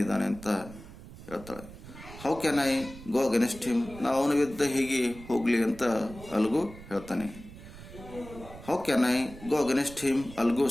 ಅಂತ ಹೇಳ್ತಾಳೆ. How can I go against him? ನಾವು ಅವನ ವಿರುದ್ಧ ಹೇಗೆ ಹೋಗಲಿ ಅಂತ ಅಲ್ಗು ಹೇಳ್ತಾನೆ. How can I go against him? Algo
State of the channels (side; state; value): right; noise; rumble, 16 dB below the sound